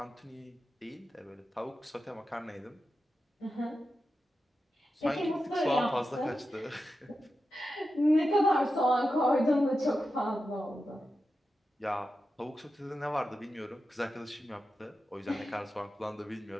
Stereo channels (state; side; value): normal; both; correlation 0.90